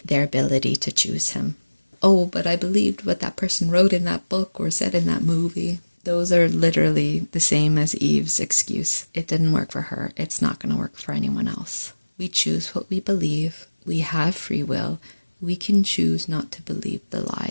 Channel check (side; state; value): both; inverted; correlation -1.00